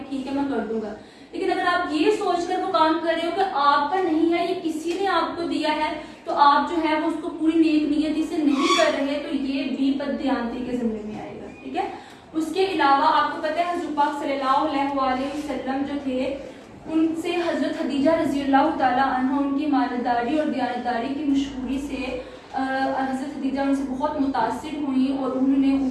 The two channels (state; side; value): identical; both; correlation 1.00